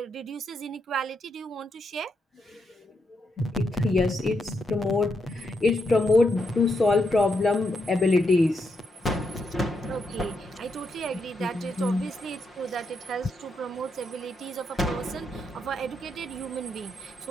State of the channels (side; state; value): both; normal; correlation 0.81